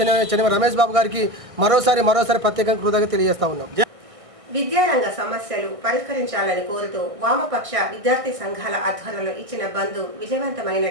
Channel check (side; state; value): left; late; 1.6 ms